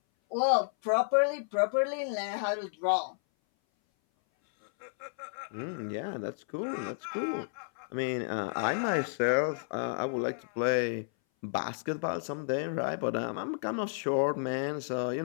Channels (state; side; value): silent; right; 57 dB below the other